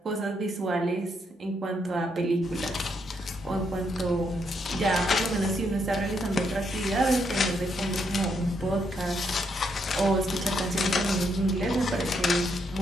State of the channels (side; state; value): both; normal; correlation 0.77